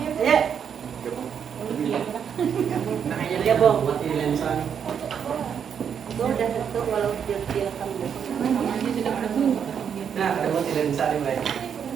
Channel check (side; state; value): left; quieter; 7.8 dB